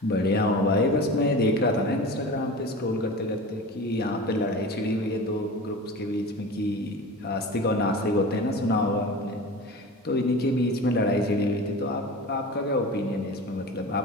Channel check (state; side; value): normal; both; correlation 0.33